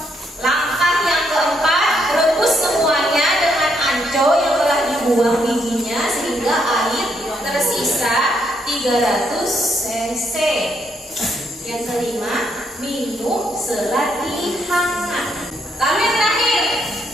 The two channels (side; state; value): both; normal; correlation 0.75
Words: Langkah yang keempat, rebus semuanya dengan anco yang telah dibuang bijinya sehingga air tersisa 300 cc. Yang kelima, minum selagi hangat. Lalu yang terakhir,